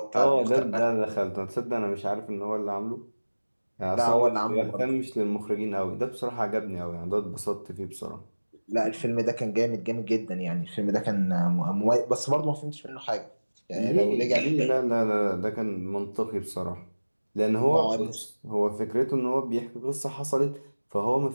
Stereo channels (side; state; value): both; inverted; correlation -1.00